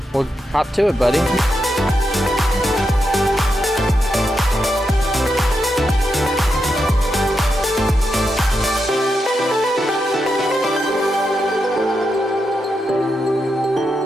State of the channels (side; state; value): both; normal; correlation 0.85